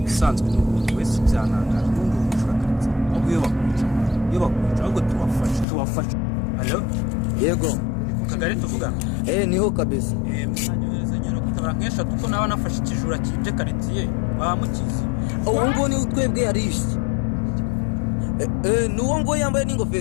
Bisanzwe n'umuntu wese byanangaje n'undi umushakaritse. Aguye bakwica ahubwo tuwafasha. Alo? Yego. Kagari tuvuga. Niho kabisa. Mwanyohereza nyero kutabara nkesha kuko nawe nafashe ikijura kije karitiye bamukize. Uwo ngo ni utwebwe yarishe. Nuwo ngo yambaye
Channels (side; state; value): right; drops out; at 5.7 s